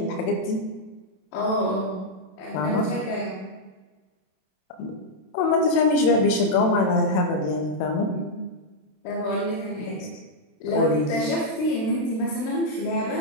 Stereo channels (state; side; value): late; right; 27 ms